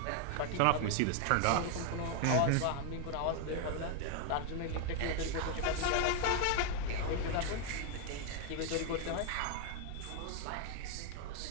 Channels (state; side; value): different; both; correlation 0.00